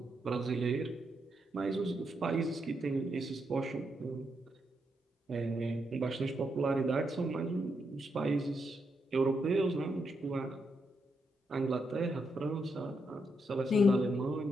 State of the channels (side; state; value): both; normal; correlation 0.81